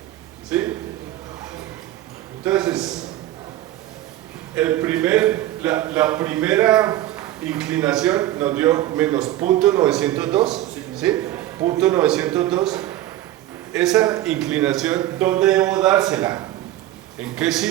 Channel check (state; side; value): quieter; left; 14.4 dB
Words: ¿Sí? Entonces, la primera inclinación nos dio menos punto 902, ¿sí? Punto 902. Esa inclinación, ¿dónde debo dársela? ¿En qué